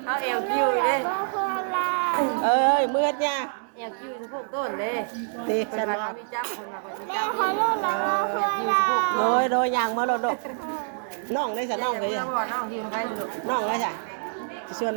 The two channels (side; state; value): left; silent; digital silence